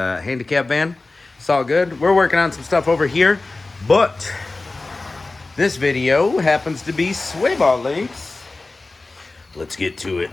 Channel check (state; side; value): quieter; right; 3.3 dB